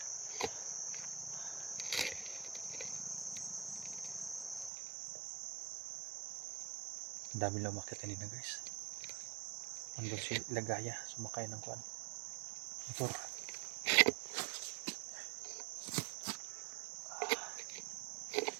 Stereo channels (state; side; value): drops out; left; at 4.7 s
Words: Ang dami lang umakyat kanina guys. Andun si Lagaya, sumakay ng kuan motor.